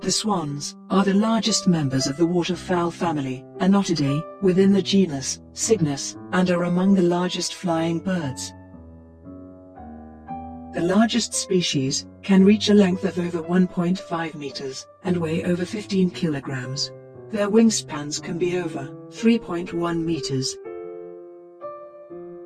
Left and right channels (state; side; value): identical; both; correlation 1.00